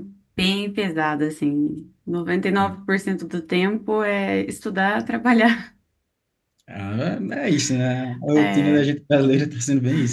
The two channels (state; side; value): identical; both; correlation 1.00